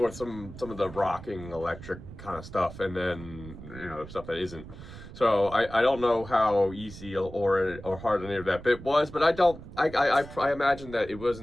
some of the rocking electric kind of stuff, and then stuff that isn't. So I don't know how easy or hard any of that bit was, but I imagine that it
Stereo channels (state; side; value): noise; right; rumble, 14 dB below the sound